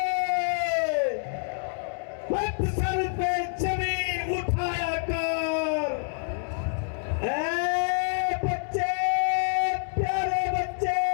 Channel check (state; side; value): silent; right; 60 dB below the other